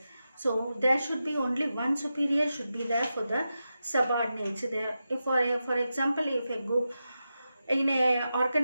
So there should be only one superior should be there for the subordinates. For example, if a group in a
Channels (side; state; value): both; inverted; correlation -0.90